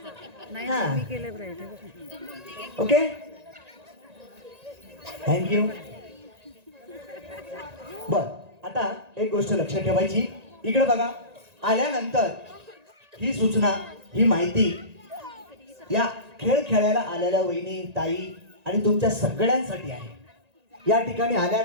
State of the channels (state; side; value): late; left; 1.9 ms